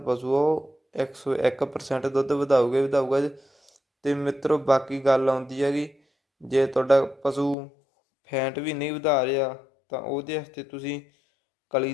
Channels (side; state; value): right; drops out; at 7.6 s